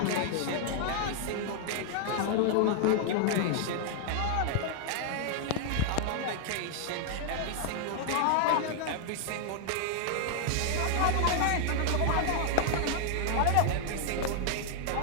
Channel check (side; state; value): both; different; correlation 0.00